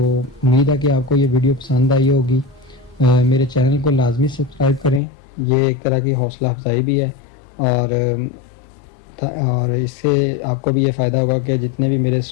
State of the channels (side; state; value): right; drops out; at 5.0 s